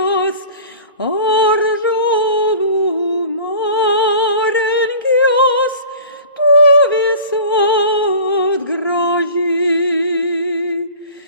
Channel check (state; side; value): inverted; both; correlation -0.41